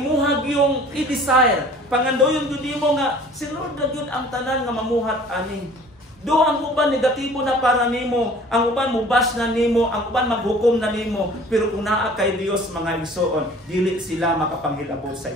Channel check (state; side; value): normal; both; correlation 0.49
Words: yung i-desire pangandoyon gud nimo nga si Lord na gyud ang tanan nga mamuhat ani. Do ang uban negatibo na para nimo, ang uban mubas na nimo, ang uban maghukom na nimo, pero kung naa kay Dios mga igsoon, dili sila makapanghilabot sa